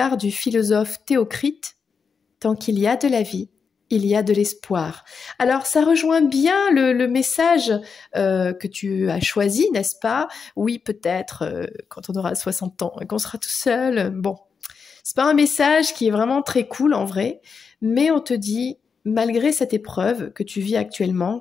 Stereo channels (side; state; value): right; quieter; 5.7 dB